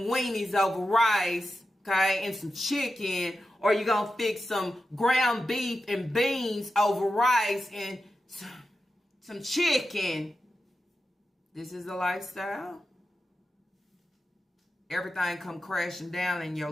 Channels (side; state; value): both; normal; correlation 0.91